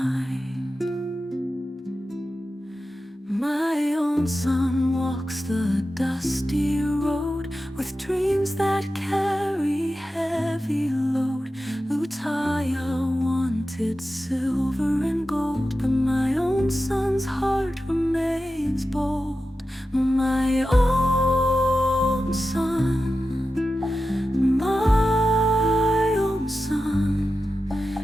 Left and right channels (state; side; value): normal; both; correlation 0.92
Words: My own son walks the dusty road with dreams that carry heavy load. Lutaya wanted silver and gold, but my own son's heart remains bold. My own son, my own